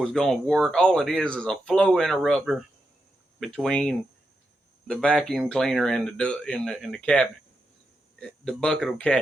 going to work. All it is a flow interrupter between the vacuum cleaner and the cabinet. The bucket will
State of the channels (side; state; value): both; normal; correlation 0.86